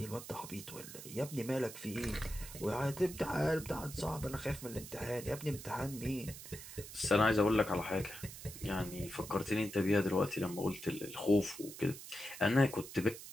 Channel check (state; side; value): noise; right; hiss, 13 dB below the sound